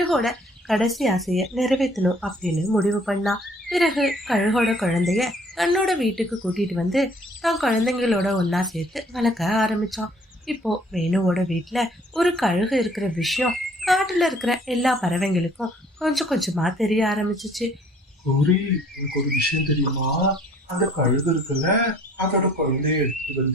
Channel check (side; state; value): both; normal; correlation 0.57